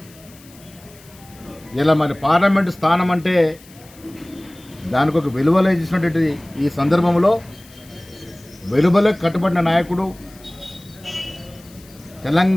ఇలా మరి పార్లమెంటు స్థానం అంటే దానికి ఒక విలువలే ఇచ్చినటువంటి ఈ సందర్భంలో వెలువలకు కట్టుబడిన నాయకుడు,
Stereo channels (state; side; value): noise; left; hiss, 24 dB below the sound